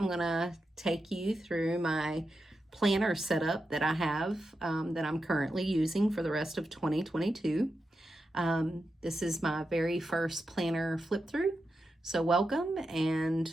gonna take you through my planner setup that I have that I'm currently using for the rest of 2022. This is my very first planner flip through, so welcome.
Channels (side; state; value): both; normal; correlation 0.89